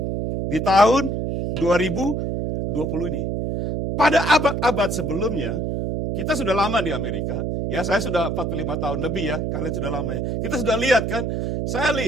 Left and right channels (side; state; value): right; noise; hum, 1 dB below the sound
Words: di tahun 2020 ini. Pada abad-abad sebelumnya, kita sudah lama di Amerika. Ya, saya sudah 45 tahun lebih ya. Kalian sudah lama ya. Kita sudah lihat kan. Saya